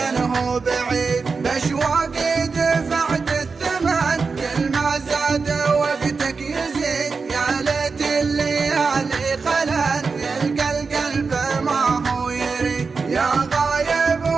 بعيد. بأشواقي دفعت الثمن، كل ما زاد وقتك يزيد. يا ليت الليالي خلان يلقى القلب ما هو يريد. يا غايب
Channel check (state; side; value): quieter; left; 4.7 dB